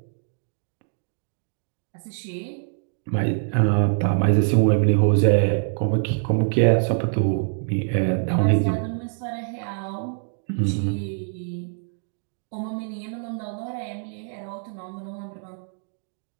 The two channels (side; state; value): left; silent; digital silence